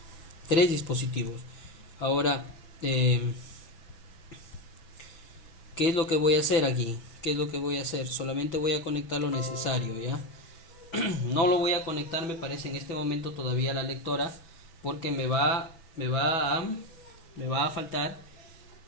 tres dispositivos. Ahora ¿Qué es lo que voy a hacer aquí? ¿Qué es lo que voy a hacer? Solamente voy a conectar lo necesario, ¿ya? No lo voy a conectar, me parece, en este momento todavía a la lectora, porque me va a faltar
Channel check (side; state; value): right; late; 6.1 ms